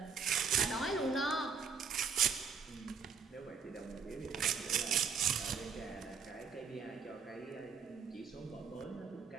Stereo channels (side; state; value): left; quieter; 6.0 dB